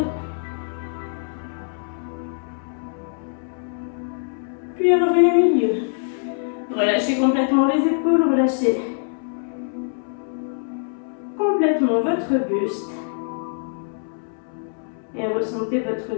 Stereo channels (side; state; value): right; silent; 63 dB below the other